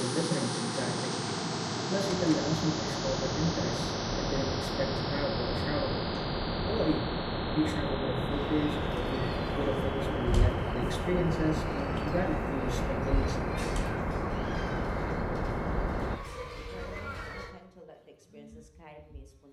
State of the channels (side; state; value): both; identical; correlation 1.00